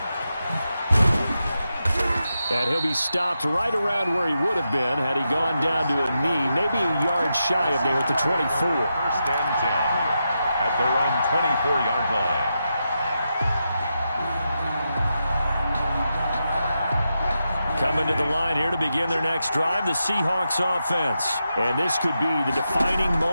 And he'll be stopped right around where he would have been had he gone down to a knee, maybe a yard shy of there at the 24. 1st and 10 at their own 24-yard line. Coming to the line here to begin their next drive, the Seahawks offense. And this could be the defining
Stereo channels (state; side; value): inverted; both; correlation -0.87